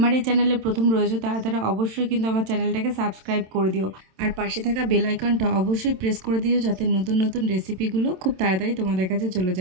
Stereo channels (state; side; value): late; left; 27 ms